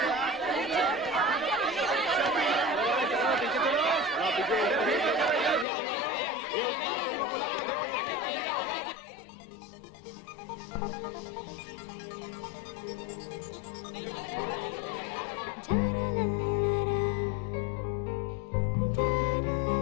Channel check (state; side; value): drops out; right; at 5.7 s